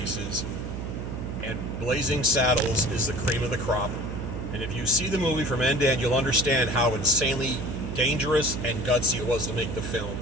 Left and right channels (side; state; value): right; noise; hum, 6 dB below the sound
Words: And Blazing Saddles is the cream of the crop. And if you see the movie from end to end, you'll understand how insanely dangerous and gutsy it was to make the film.